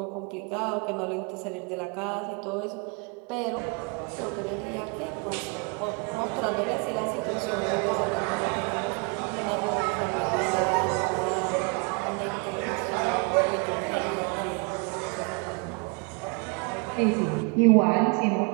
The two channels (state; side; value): quieter; left; 34.0 dB